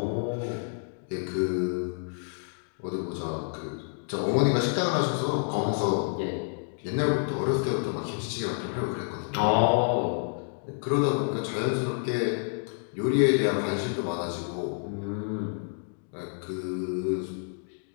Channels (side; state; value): right; silent; digital silence